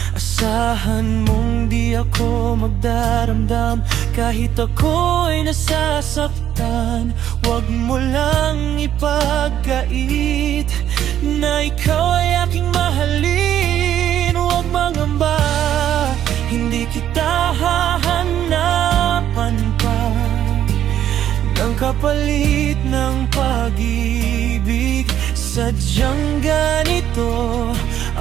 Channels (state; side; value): quieter; left; 10.8 dB